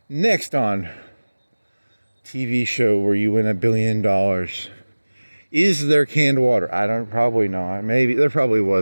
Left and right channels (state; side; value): inverted; both; correlation -1.00